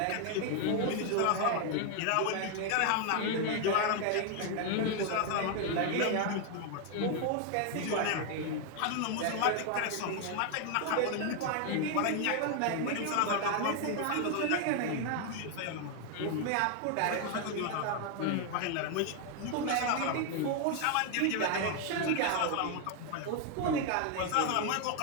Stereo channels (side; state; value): both; different; correlation 0.01